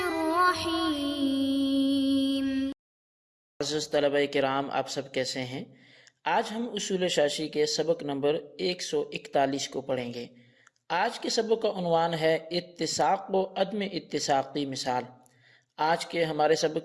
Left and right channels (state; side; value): identical; both; correlation 1.00